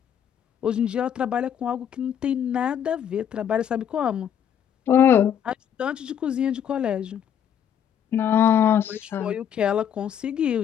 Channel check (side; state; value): right; quieter; 9.1 dB